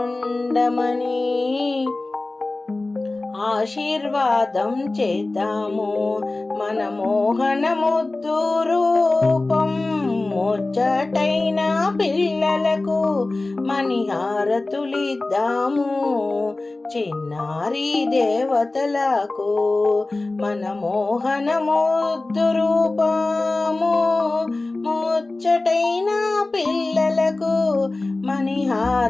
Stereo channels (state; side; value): quieter; right; 3.1 dB